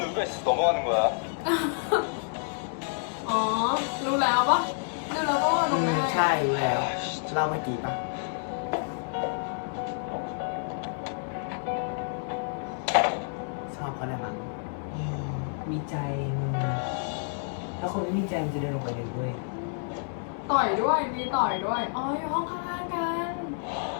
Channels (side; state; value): right; silent; digital silence